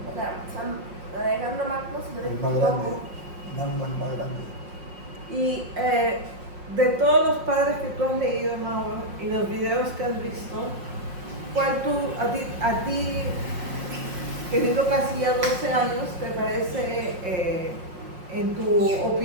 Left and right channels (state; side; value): late; left; 5.6 ms